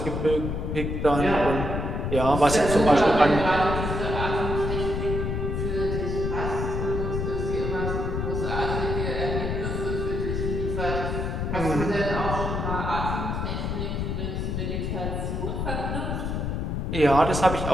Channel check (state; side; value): noise; left; rumble, 2 dB below the sound